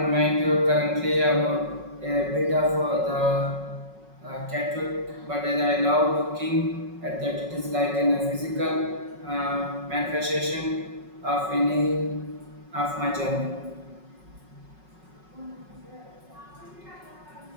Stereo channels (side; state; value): left; late; 5.4 ms